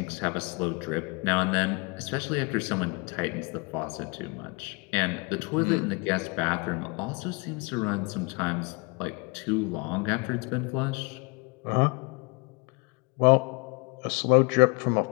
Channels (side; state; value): right; quieter; 30.6 dB